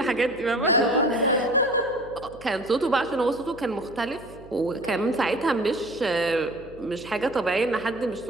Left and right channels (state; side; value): noise; right; hum, 20 dB below the sound